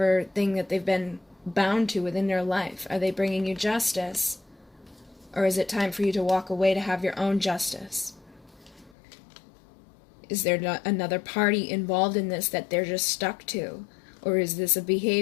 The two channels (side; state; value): right; drops out; at 9.0 s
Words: thing that they've been bound to within their life? Are they bringing you justice? Or is it time for you to walk away to have your own justice? Is there not another party involved in this that they're just stuck to? Or is this a